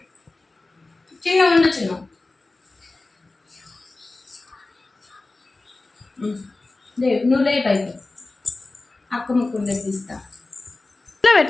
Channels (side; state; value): right; quieter; 3.3 dB